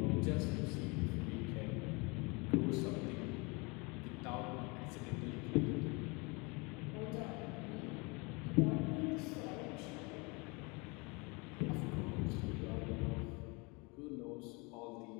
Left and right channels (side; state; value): right; quieter; 28.4 dB